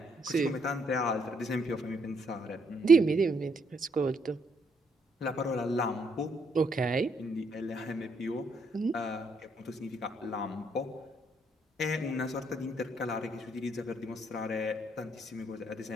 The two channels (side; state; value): both; normal; correlation 0.72